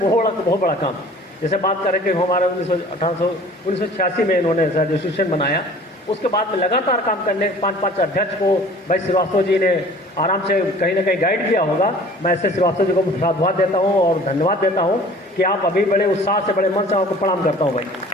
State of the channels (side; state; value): both; normal; correlation 0.48